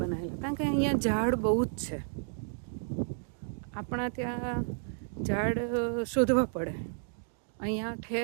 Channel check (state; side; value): silent; left; digital silence